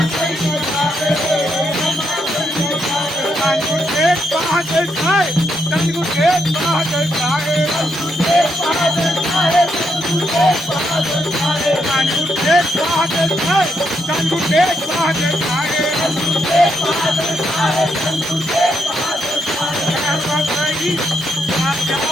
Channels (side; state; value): both; normal; correlation 0.79